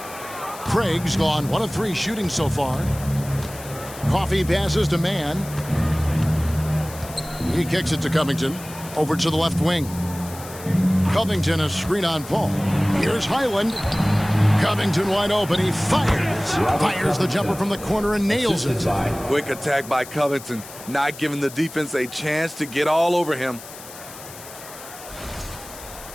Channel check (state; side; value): noise; left; hiss, 16 dB below the sound